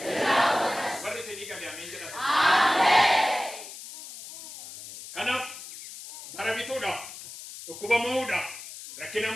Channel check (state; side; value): noise; left; hiss, 13 dB below the sound